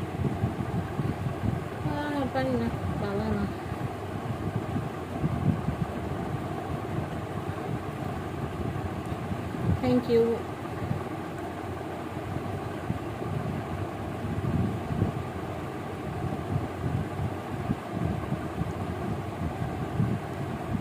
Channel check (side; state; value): both; identical; correlation 1.00